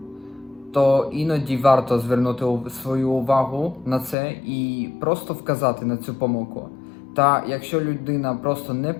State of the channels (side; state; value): right; drops out; at 4.2 s